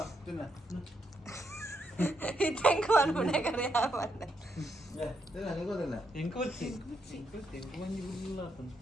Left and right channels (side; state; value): both; normal; correlation 0.79